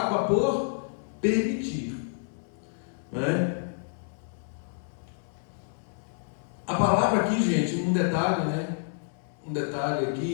por permitir, né? A palavra aqui, gente, um detalhe, né? Um detalhe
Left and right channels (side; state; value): right; silent; digital silence